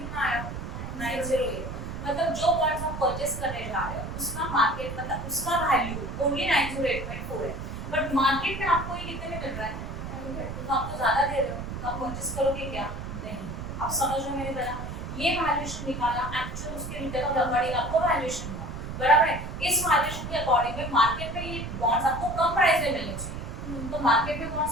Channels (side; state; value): right; noise; rumble, 7 dB below the sound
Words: आया 908 मतलब जो बॉन्ड्स हम परचेस करने जा रहे हैं उसका मार्केट मतलब उसका वैल्यू ओनली 908.4 है, बट मार्केट में आपको ये कितने में मिल रहा है, तो आपको ज्यादा दे रहे हो तो आप परचेस करोगे क्या, नहीं, आप समझ रहे हो मेरी तरह, ये वैल्यूएशन निकाला एक्चुअल उसके रिटर्न के अकॉर्डिंग आपको वैल्यूएशन हुआ, बराबर है, इस वैल्यूएशन के अकॉर्डिंग में मार्केट में ये बॉन्ड्स आपको कम प्राइस में मिलने चाहिए, तो मार्केट में